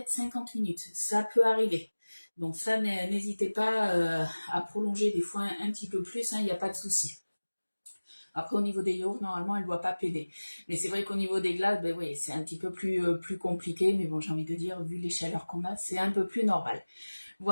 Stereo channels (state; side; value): inverted; both; correlation -1.00